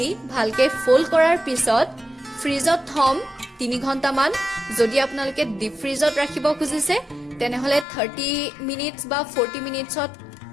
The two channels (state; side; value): drops out; right; at 7.9 s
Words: ভালকে ফোল্ড কৰাৰ পিছত ফ্ৰিজত থম 3 ঘণ্টামান যদি আপোনালোকে ডিপ ফ্ৰিজত ৰাখিব খুজিছে তেনেহলে 30 মিনিটছ বা 40 মিনিটছত